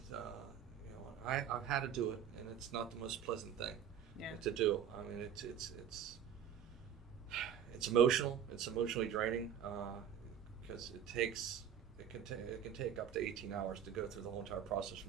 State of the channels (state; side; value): quieter; left; 8.7 dB